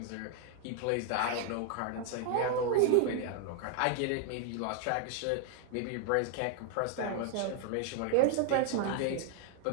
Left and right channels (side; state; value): both; different; correlation 0.00